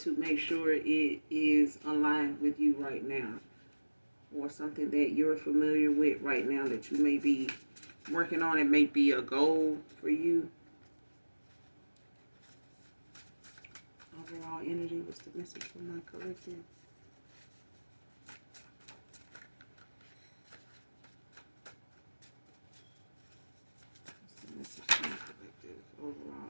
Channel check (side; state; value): both; inverted; correlation -1.00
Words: make sure it is aligned with you right now, or something that you're familiar with right now that you may be working on. It may be a goal for you. Overall energy, what's the message from my collective? What's the message from my collective? Overall